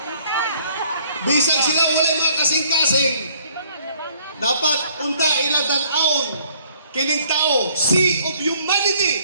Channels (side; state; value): both; inverted; correlation -0.61